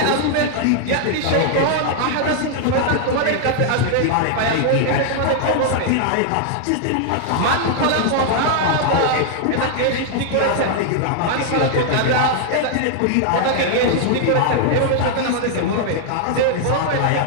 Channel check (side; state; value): both; different; correlation 0.00